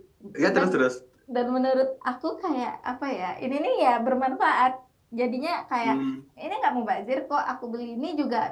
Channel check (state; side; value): identical; both; correlation 1.00